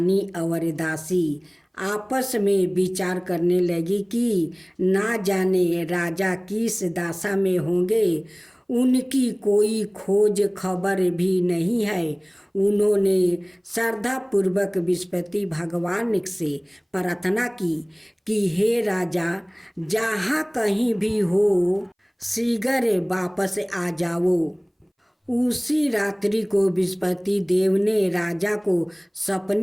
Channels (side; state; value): both; identical; correlation 1.00